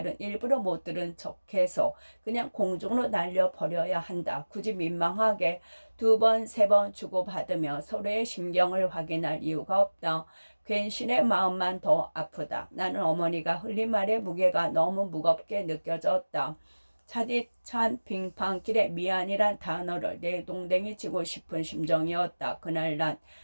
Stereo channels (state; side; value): inverted; both; correlation -1.00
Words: 일부러 못 들은 척해서 그냥 공중으로 날려버려야 한다. 굳이 민망하게 2번, 3번 주고받으며 서로의 심경을 확인할 이유가 없다. 괜신의 마음만 더 아프다. 나는 어머니가 흘린 말의 무게가 너무 무겁게 느껴졌다. 차디찬 빙판길에 미안이란 단어를 내동댕이 치고 싶은 심정이었다. 그날 난